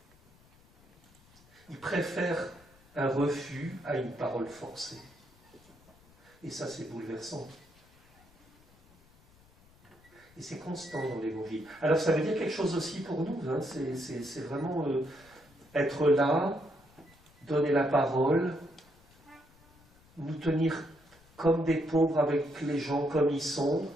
Il préfère un refus à une parole forcée. Et ça, c'est bouleversant. Et c'est constant dans l'Évangile. Alors, ça veut dire quelque chose aussi pour nous. Hein. C'est vraiment être là, donner la parole, nous tenir comme des pauvres avec les gens comme ils sont,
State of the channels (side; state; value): left; noise; rumble, 28 dB below the sound